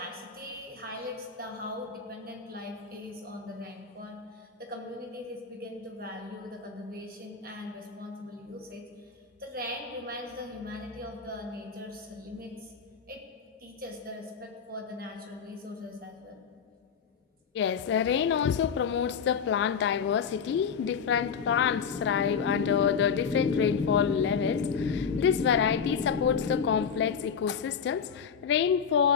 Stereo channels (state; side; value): quieter; right; 6.6 dB